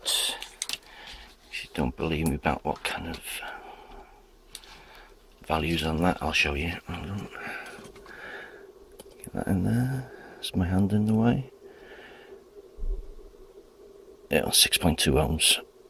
you don't believe me about what kind of values on that, I'll show you. Hold on. Get that in there. Is my hand in the way? Yeah, 6.2 ohms.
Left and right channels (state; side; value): identical; both; correlation 1.00